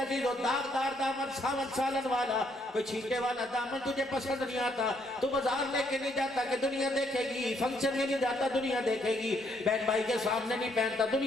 दिल दागदार दामन, सावन सालन वाला, कोई छींटे वाला दामन तुझे पसंद नहीं आता, तू बाजार लेके नहीं जाता कि दुनिया देखेगी, फंक्शन में नहीं जाता दुनिया देखेगी, बहन भाई के सामने नहीं पहनता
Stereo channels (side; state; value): both; normal; correlation 0.71